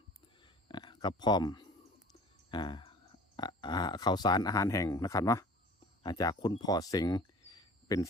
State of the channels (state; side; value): normal; both; correlation 0.45